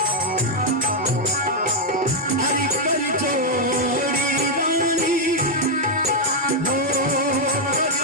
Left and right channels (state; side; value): normal; both; correlation 0.00